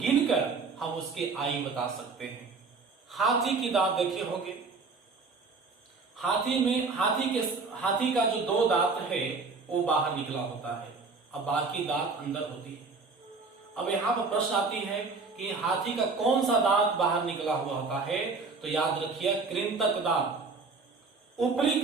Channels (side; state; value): left; quieter; 4.3 dB